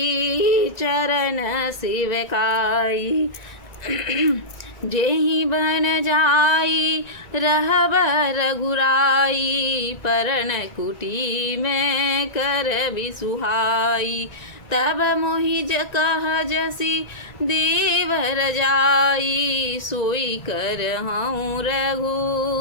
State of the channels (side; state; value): right; late; 1.9 ms